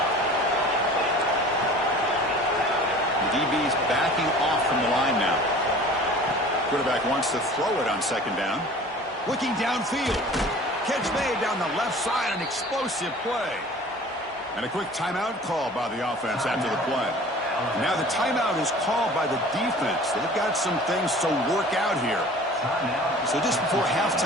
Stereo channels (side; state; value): both; normal; correlation 0.44